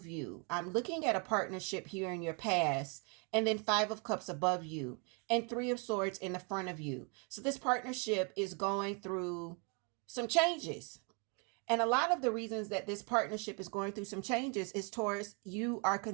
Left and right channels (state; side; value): quieter; left; 35.5 dB